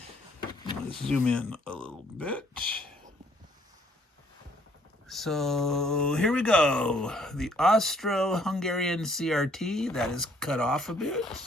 zoom in a little bit. So here we go. The Austro-Hungarian CRT, that is cut off a bit.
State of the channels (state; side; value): normal; both; correlation 0.63